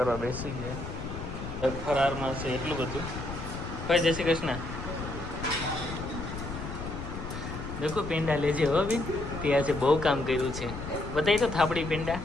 બેસી ગયા ફરારમાં છે એટલું બધું ભાઈ જય શ્રી કૃષ્ણ દેખો પેંડા લેજે હો બેન તે આજે બહુ કામ કર્યું છે બતાવી તો થાપડી પેંડા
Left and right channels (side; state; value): left; noise; rumble, 8 dB below the sound